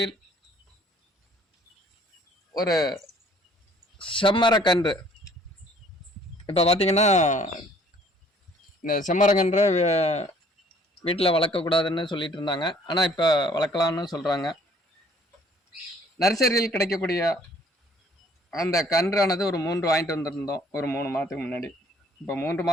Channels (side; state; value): both; normal; correlation 0.58